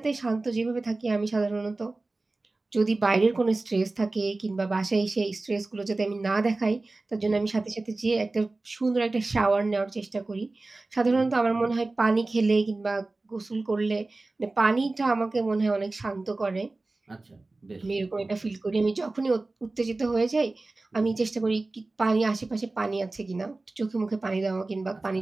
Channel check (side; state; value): left; quieter; 3.2 dB